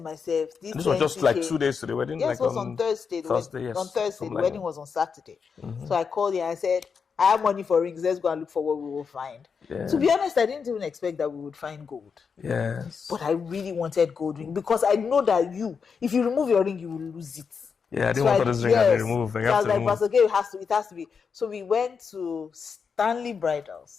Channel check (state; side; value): quieter; right; 5.9 dB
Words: myself, this was just like 2 days to the wedding? Yes, it was on Thursday. Thursday, yes. On Thursday. The wedding was on Saturday. Mm-hmm. So I called him and I said, I have money for rings. Let's go and look for what we will find. Yeah. To be honest, I didn't even expect that we would find gold. Yes. But I really wanted gold ring because I know that if you remove your ring, you will lose it. Yeah, I didn't want this ring to remove. So I was like, Pastor Gay, it has to be. So we went to Stanley